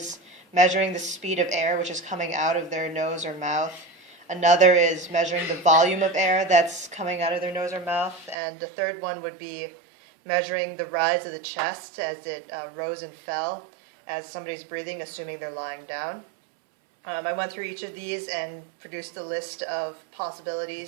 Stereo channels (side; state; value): left; drops out; at 8.3 s